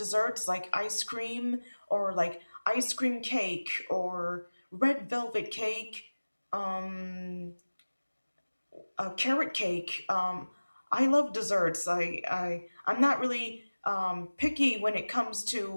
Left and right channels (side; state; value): both; inverted; correlation -1.00